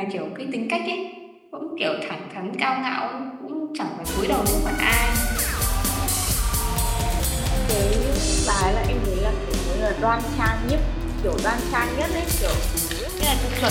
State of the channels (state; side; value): identical; both; correlation 1.00